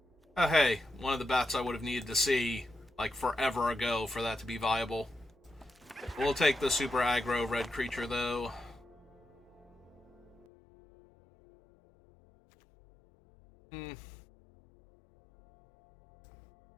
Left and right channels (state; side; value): drops out; right; at 10.5 s